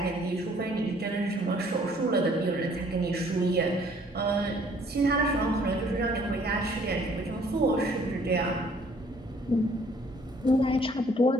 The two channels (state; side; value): normal; both; correlation 0.60